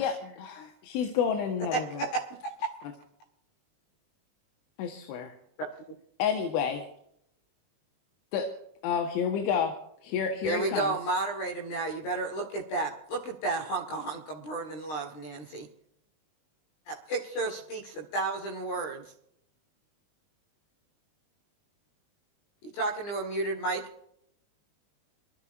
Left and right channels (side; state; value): right; late; 20 ms